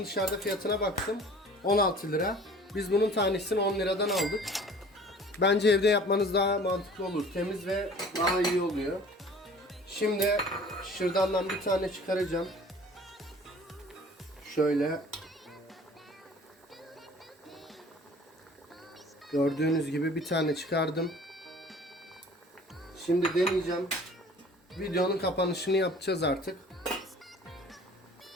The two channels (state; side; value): normal; both; correlation 0.48